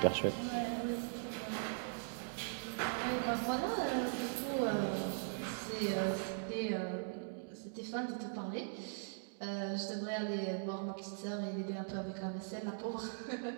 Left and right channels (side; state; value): left; silent; digital silence